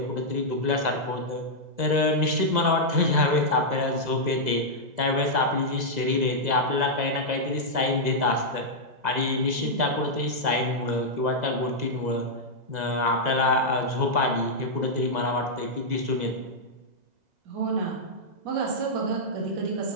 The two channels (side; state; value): left; late; 2.0 ms